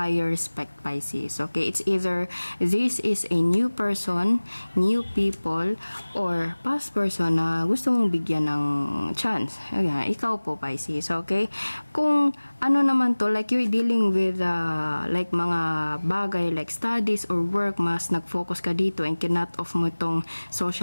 respect, Pisces. Okay? It's either this is a new person, new people, or past person na gusto mong bigyan ng chance. Ayan, ikaw po, Pisces. Okay? Kung ano naman to, like you're dealing with like mga bagay like studies or work, mas nag-focus ka dito and kinut off mo itong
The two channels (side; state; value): both; inverted; correlation -1.00